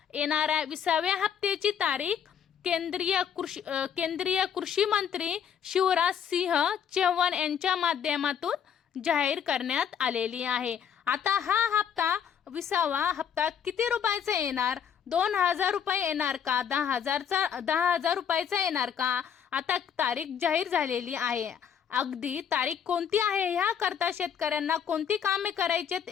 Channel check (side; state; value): right; quieter; 8.2 dB